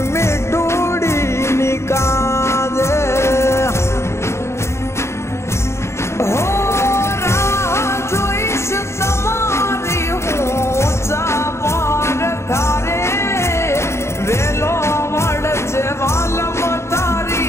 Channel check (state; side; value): late; right; 0.13 ms